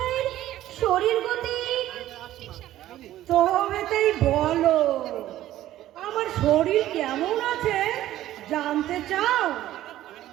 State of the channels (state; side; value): quieter; left; 13.8 dB